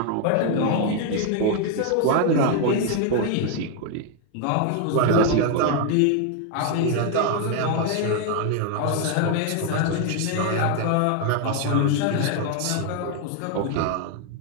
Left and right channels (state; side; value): different; both; correlation 0.01